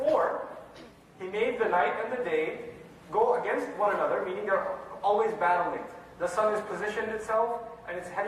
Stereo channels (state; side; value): identical; both; correlation 1.00